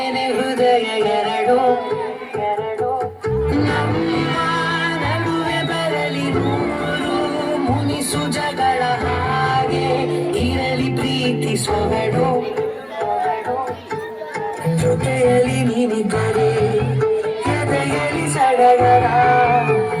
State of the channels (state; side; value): identical; both; correlation 1.00